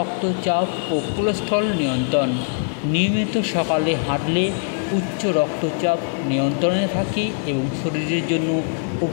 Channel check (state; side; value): silent; right; digital silence